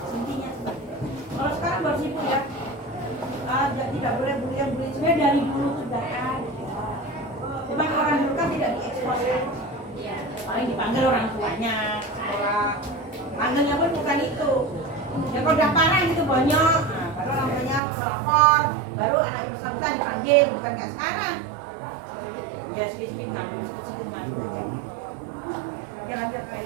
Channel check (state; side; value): drops out; left; at 17.8 s